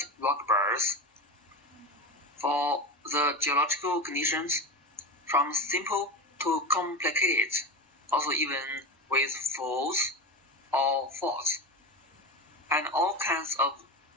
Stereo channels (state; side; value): normal; both; correlation 0.23